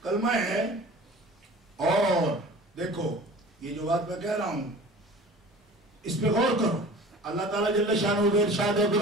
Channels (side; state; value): both; normal; correlation 0.42